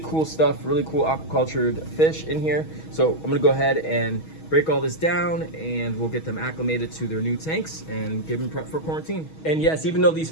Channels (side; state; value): right; late; 6.3 ms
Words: cool stuff, really cool aquacultured fish in here. So I'm gonna go ahead and break all this down and we'll get them acclimated to their new tanks and give them prep for quarantine. And yes, even though these